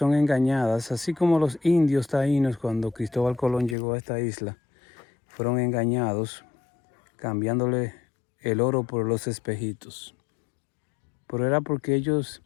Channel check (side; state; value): right; drops out; at 3.8 s